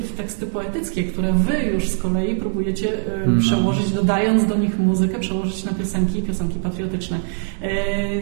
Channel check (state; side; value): silent; left; 62 dB below the other